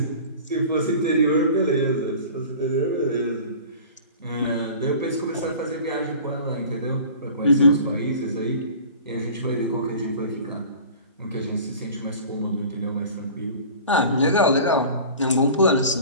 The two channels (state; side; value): inverted; both; correlation -0.41